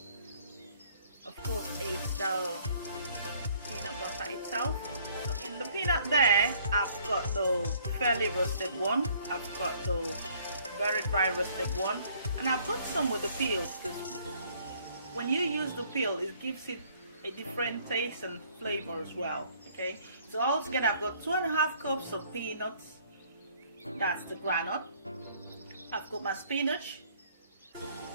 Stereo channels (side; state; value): both; inverted; correlation -0.61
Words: of course, is the peanut butter itself. So in the peanut there, I've got the fairly roasted one, I've got the very dry roasted one, and I've got some with the peel. When you use the peel, it gives it a different taste and flavor as well. Okay, so altogether I've got 2.5 cups of peanuts, that's the groundnut. I've got my spinach,